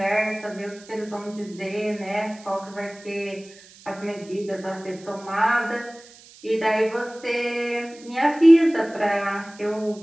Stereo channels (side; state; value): right; noise; hiss, 22 dB below the sound